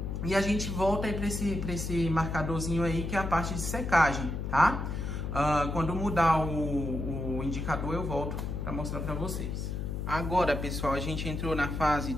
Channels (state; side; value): noise; left; hum, 3 dB below the sound